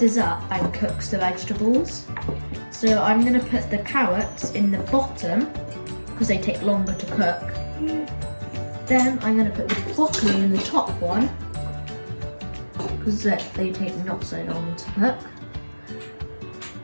up and cooks the vegetables. So I'm going to put the carrots in the bottom, because they take longer to cook. Then I'm going to put the broccoli in the top one, because they take not so long to cook.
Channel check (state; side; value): inverted; both; correlation -1.00